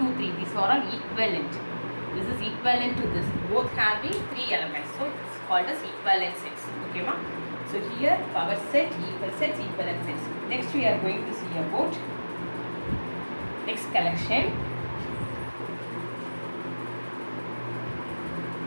3, these are all equivalent. This is equivalent to this, both having 3 elements. So it's called as equivalent sets. Okay, ma? So here power set, equal sets, equivalent sets. Next we are going to see about next collection.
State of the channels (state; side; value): inverted; both; correlation -1.00